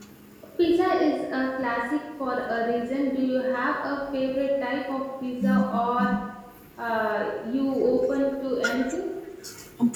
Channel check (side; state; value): both; identical; correlation 1.00